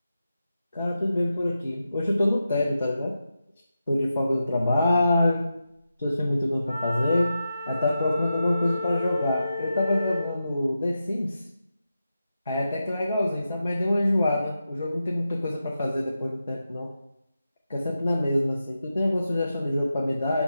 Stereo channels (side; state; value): both; inverted; correlation -0.89